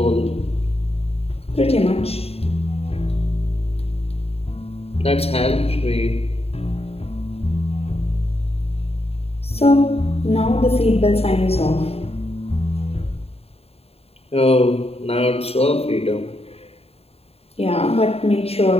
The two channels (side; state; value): right; late; 0.29 ms